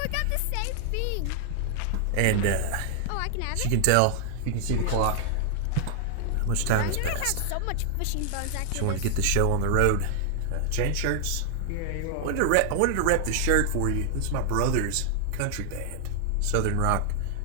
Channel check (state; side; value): different; both; correlation 0.00